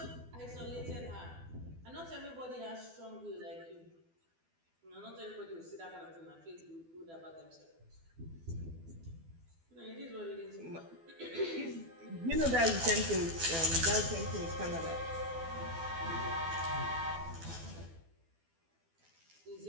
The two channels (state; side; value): late; left; 12 ms